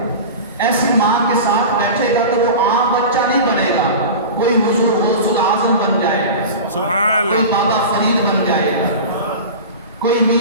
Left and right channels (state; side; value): inverted; both; correlation -0.31